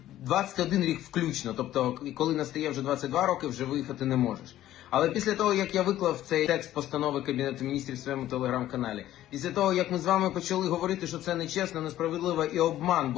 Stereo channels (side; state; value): right; quieter; 13.4 dB